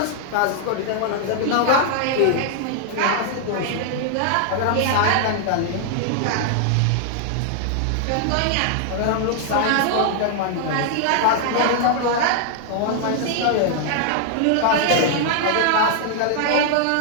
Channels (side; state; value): both; different; correlation 0.00